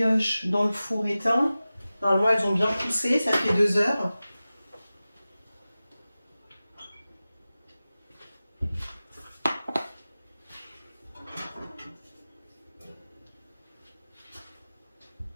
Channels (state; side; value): inverted; both; correlation -0.96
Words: dans le four éteint. Normalement, elles ont bien poussé, ça fait 2 heures.